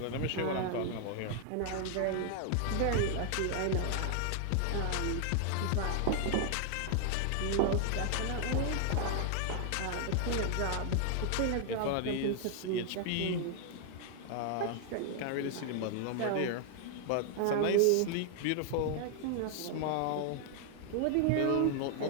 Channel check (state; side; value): different; both; correlation 0.00